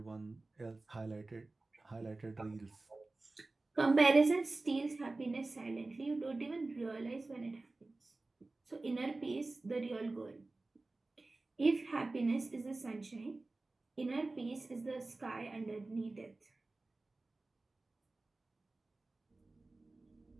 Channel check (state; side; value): quieter; left; 3.2 dB